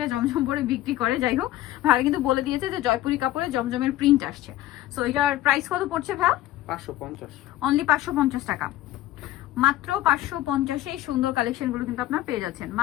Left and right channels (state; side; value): quieter; right; 14.6 dB